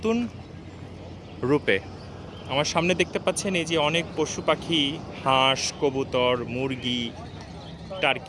রূপে। আমার সামনে দেখতে পাচ্ছেন এই যে অনেক পশু পাখি, হাঁস, কবুতর, মুরগি,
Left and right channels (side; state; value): both; identical; correlation 1.00